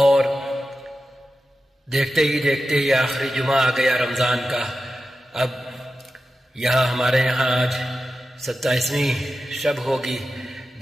دیکھتے ہی دیکھتے یہ آخری جمعہ آ گیا رمضان کا۔ اب ہمارے یہاں آج 27ویں شب ہوگی،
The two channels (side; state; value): both; normal; correlation 0.92